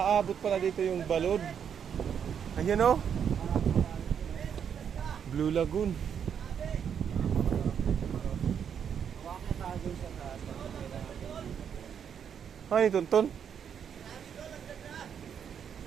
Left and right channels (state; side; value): quieter; left; 7.9 dB